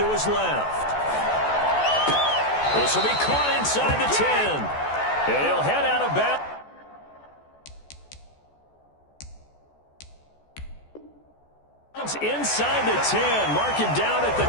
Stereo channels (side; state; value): right; late; 14 ms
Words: his left. This will be caught inside the 10. And he'll head out of bounds. Inside the 10, mark him down at the